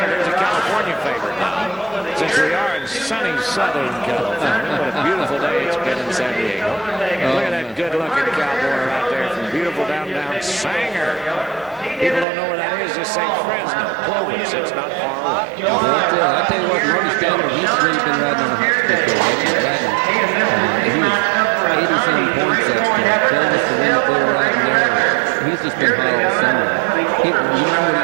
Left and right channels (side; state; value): left; drops out; at 12.2 s